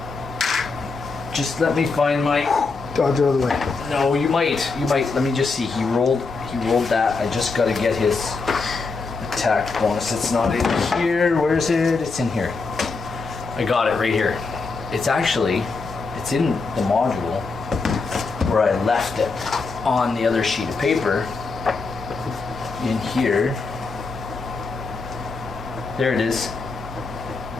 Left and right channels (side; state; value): right; quieter; 4.2 dB